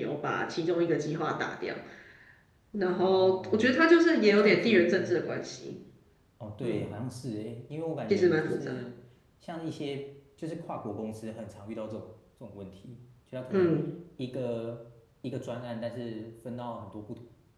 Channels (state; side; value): identical; both; correlation 1.00